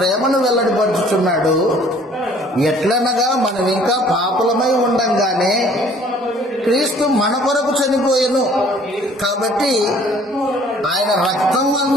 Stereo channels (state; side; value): normal; both; correlation 0.55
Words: వెల్లడిపరుచుచున్నాడు. ఎట్లనగా మనం ఇంకా పాపులమై ఉండంగానే క్రీస్తు మన కొరకు చనిపోయెను. కాబట్టి ఆయన రక్తం